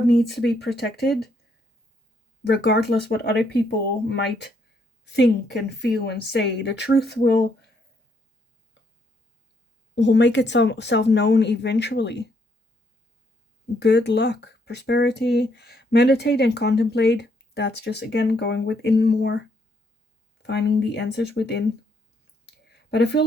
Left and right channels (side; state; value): both; normal; correlation 0.72